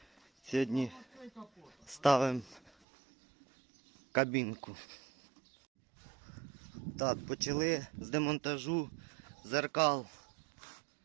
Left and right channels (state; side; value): drops out; left; at 2.7 s